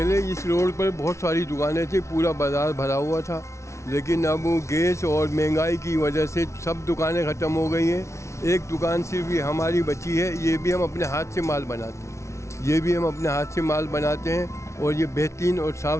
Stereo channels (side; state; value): right; late; 0.13 ms